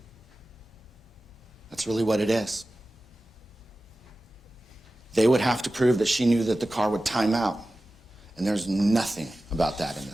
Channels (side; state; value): both; normal; correlation 0.95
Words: That's really what it is. They would have to prove that she knew that the car would time out. And there's nothing about that in